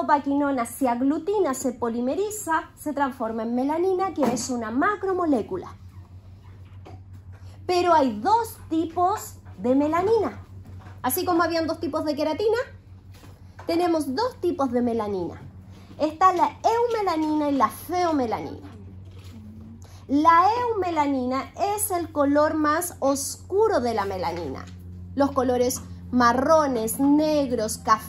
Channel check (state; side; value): identical; both; correlation 1.00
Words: se aglutina, se polimeriza, se transforma en melanina, que es una macromolécula. Pero hay dos tipos de melanina. Así como habían dos tipos de queratina, tenemos dos tipos de melanina. Está la eumelanina y la feomelanina. La eumelanina es el color más oscuro de la melanina. Los colores marrones, negros,